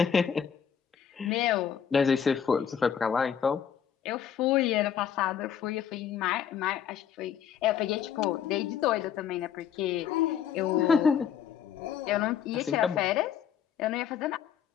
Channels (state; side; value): quieter; right; 8.3 dB